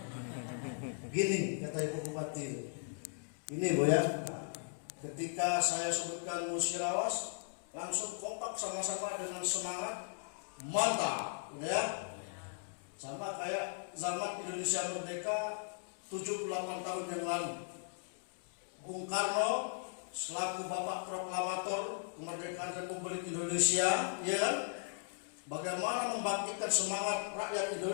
Gini kata Ibu Bupati. Ini Bu ya. Nah, ketika saya sebutkan Musirawas, langsung kompak sama-sama dengan semangat mantap, ya. Sama kayak zaman Indonesia merdeka 78 tahun yang lalu. Bung Karno selaku Bapak Proklamator kemerdekaan Republik Indonesia, ya kan? Bagaimana membangkitkan semangat rakyat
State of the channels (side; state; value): right; silent; digital silence